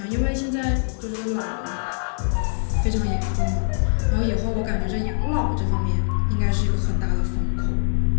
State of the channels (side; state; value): right; silent; digital silence